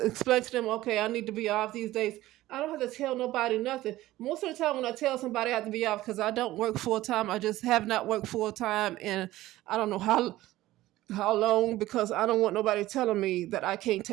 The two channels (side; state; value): left; quieter; 16.2 dB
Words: explain to them, okay, I need to be off these days. I don't have to tell nobody nothing. Most of the time when I tell somebody I have to be off, because I don't work full time, I just have not worked full time, and I don't know how long, because I don't want nobody telling me that I can't